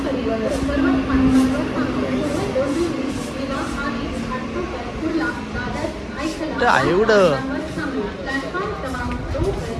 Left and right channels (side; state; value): both; identical; correlation 1.00